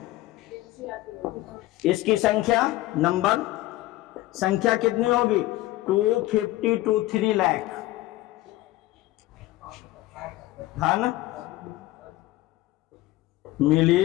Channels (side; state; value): right; quieter; 17.0 dB